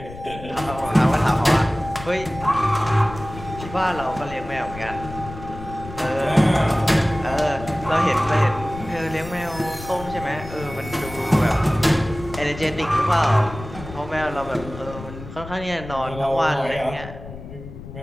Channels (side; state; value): left; noise; rumble, 13 dB below the sound